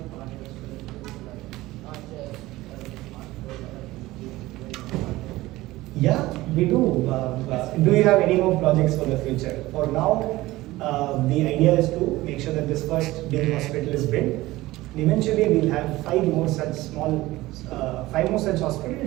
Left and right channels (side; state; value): left; quieter; 18.2 dB